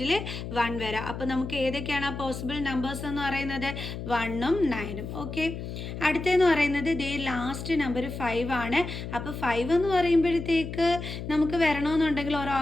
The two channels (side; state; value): left; noise; hum, 7 dB below the sound